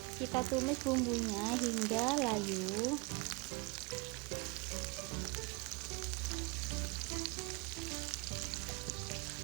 Kita tumis bumbunya hingga layu.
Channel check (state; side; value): quieter; left; 28.2 dB